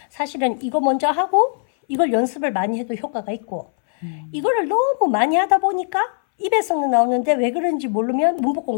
사실은 이거 먼저 하고 이걸 연습을 많이 해도 효과가 있고 이거를 너무 많이 하다 보니까 입에서는 나오는데 왜 그런지 모르면 문법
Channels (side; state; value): right; silent; 62 dB below the other